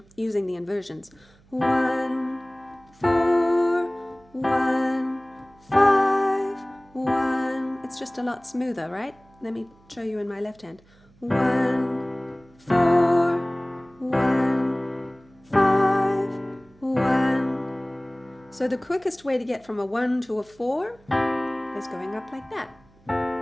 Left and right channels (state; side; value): noise; right; hum, 29 dB below the sound